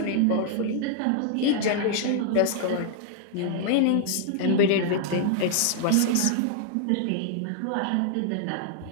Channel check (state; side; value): different; both; correlation -0.01